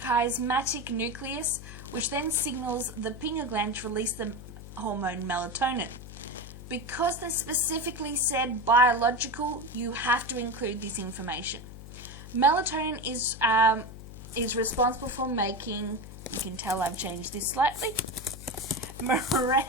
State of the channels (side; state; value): left; noise; hum, 13 dB below the sound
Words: nucleus, which then signals the pineal gland to release the hormone melatonin. Because they specifically said biological, you have to include this information. Melatonin is responsible for making, you can tell I've changed this slightly,